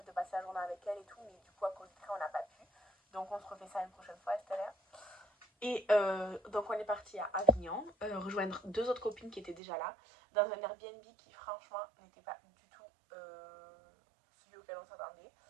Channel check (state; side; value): drops out; left; at 9.6 s